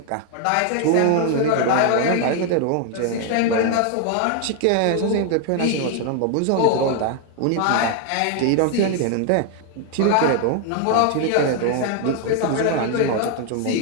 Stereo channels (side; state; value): both; different; correlation 0.00